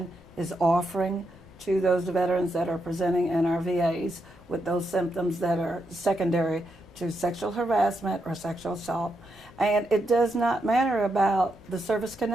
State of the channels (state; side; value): noise; left; rumble, 25 dB below the sound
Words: is offering to those veterans that are presenting in our VAs with those symptoms that are secondary to sexual harassment or sexual assault. And it does not matter about the service